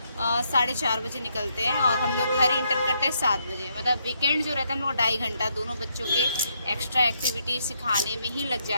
4:30 बजे निकलते हैं, और हम लोग घर इंटर करते हैं 7 बजे। मतलब वीकेंड जो रहता है हम लोग 2.5 घंटा दोनों बच्चों के एक्स्ट्रा एक्टिविटी सिखाने में ही लग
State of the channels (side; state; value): both; inverted; correlation -0.76